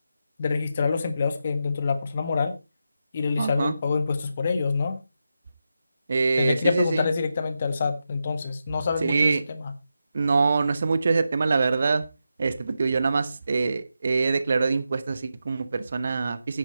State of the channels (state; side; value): inverted; both; correlation -0.87